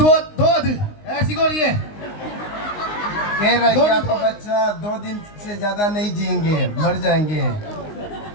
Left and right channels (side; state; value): right; late; 19 ms